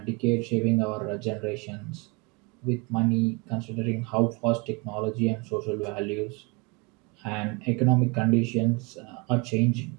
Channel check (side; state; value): left; quieter; 28.7 dB